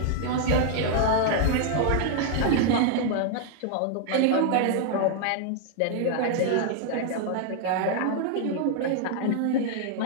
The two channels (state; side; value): different; both; correlation 0.00